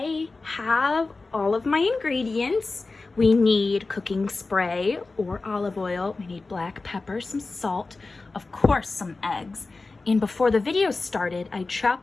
have all of my ingredients. We need cooking spray or olive oil. We need black pepper, some salt, of course, some eggs. And before the video started, I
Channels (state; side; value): quieter; right; 3.6 dB